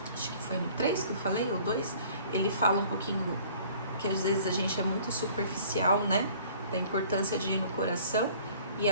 acho que foi no 3 que eu falei, ou 2, ele fala um pouquinho que às vezes a gente é muito superficial, né? Da importância de ir no coração. E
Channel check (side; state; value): both; inverted; correlation -0.52